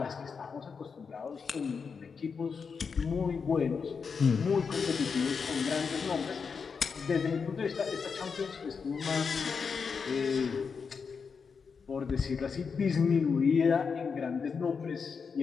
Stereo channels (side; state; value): right; quieter; 5.7 dB